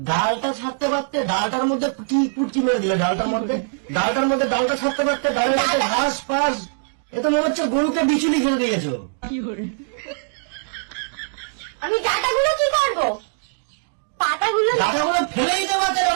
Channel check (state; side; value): silent; left; digital silence